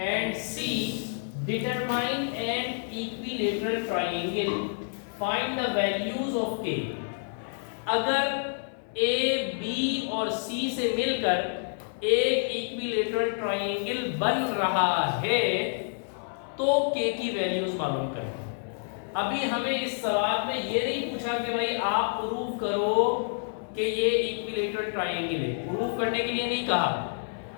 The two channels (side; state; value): right; silent; 59 dB below the other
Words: C determine an equilateral triangle, find the values of K. अगर ए बी और सी से मिलकर एक इक्विलेटरल ट्रायंगल बन रहा है तो के की वैल्यूज मालूम करें। अभी हमें इस सवाल में ये नहीं पूछा कि भाई आप प्रूव करो कि ये इक्विलेटरल ट्रायंगल है। प्रूव करने के लिए नहीं कहा,